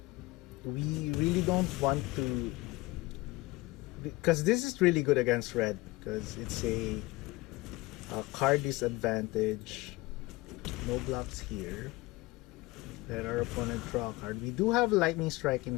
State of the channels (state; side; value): quieter; right; 21.4 dB